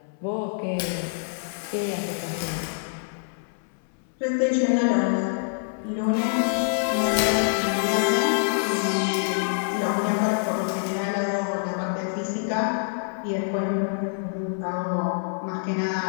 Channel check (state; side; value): silent; right; 61 dB below the other